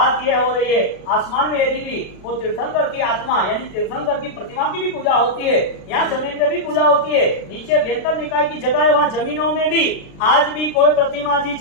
ये हो रही है आसमान में यदि भी वो तीर्थंकर की आत्मा यानी तीर्थंकर की प्रतिमा की भी पूजा होती है, यहाँ जमीन पे भी पूजा होती है। नीचे बेहतर निकाय की जगह है, वहाँ जमीनों में भी आज भी कोई प्रतिमा जी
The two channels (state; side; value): late; right; 36 ms